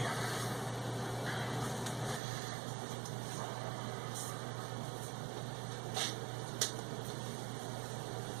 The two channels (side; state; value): left; drops out; at 2.2 s